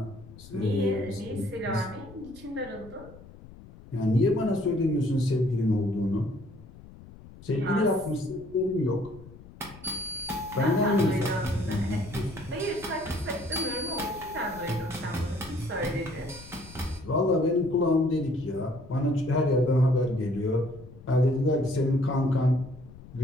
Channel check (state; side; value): noise; left; rumble, 19 dB below the sound